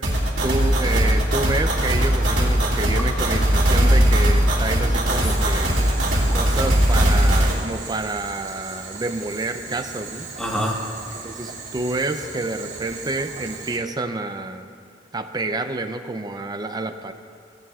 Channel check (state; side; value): normal; both; correlation 0.73